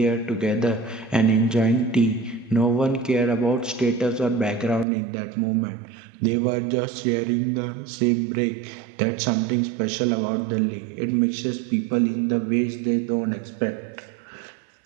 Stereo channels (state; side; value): drops out; left; at 4.9 s